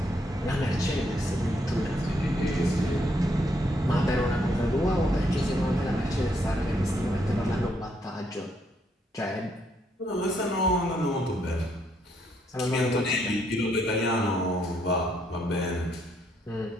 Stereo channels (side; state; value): both; normal; correlation 0.74